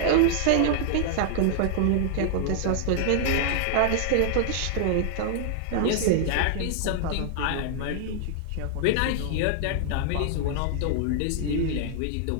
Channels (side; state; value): both; different; correlation -0.01